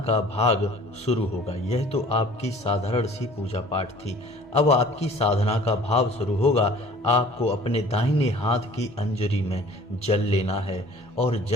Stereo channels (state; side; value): normal; both; correlation 0.49